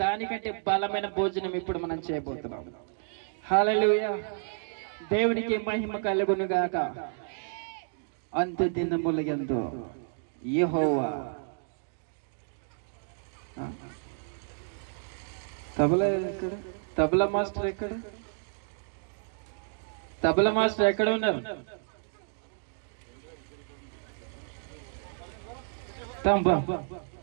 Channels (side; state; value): left; silent; digital silence